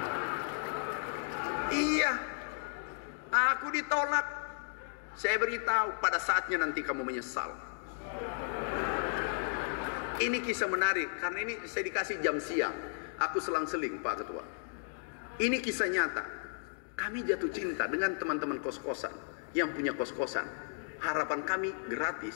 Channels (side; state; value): right; silent; digital silence